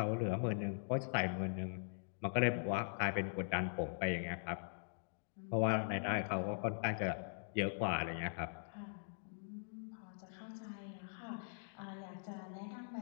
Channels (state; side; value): silent; right; digital silence